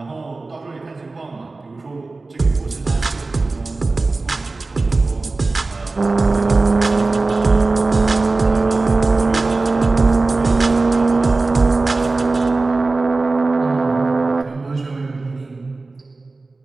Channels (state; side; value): quieter; left; 3.5 dB